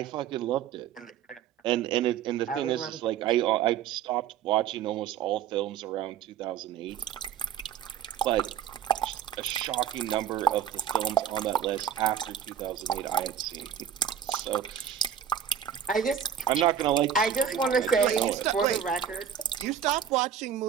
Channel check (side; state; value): left; quieter; 8.8 dB